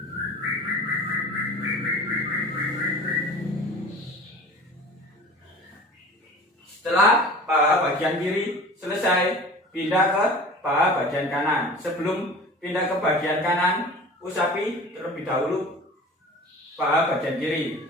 Setelah paha bagian kiri selesai, pindah ke paha bagian kanan. Sebelum pindah ke bagian kanan, usapi terlebih dahulu paha bagian kiri.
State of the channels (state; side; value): normal; both; correlation 0.39